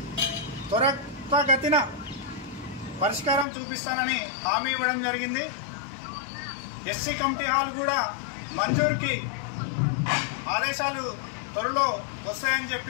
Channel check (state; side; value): drops out; right; at 3.5 s